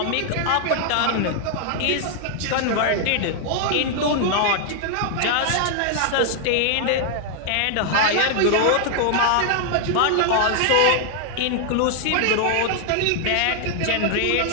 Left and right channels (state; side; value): different; both; correlation 0.00